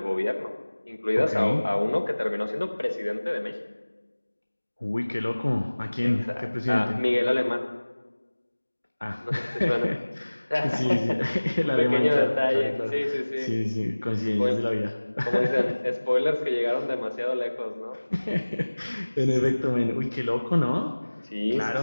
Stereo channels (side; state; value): both; inverted; correlation -1.00